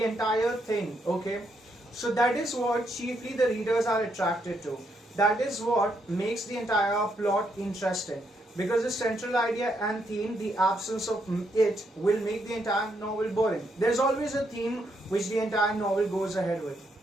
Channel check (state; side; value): normal; both; correlation 0.77